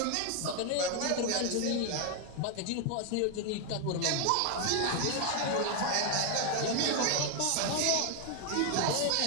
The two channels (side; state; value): both; different; correlation 0.00